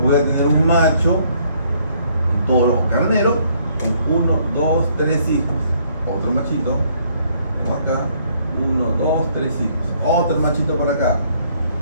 a tener un macho, un toro o carnero, con 1, 2, 3 hijos. Otro machito, tengo acá, 1, 2, 3 hijos. Otro machito por acá,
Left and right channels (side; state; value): both; inverted; correlation -0.66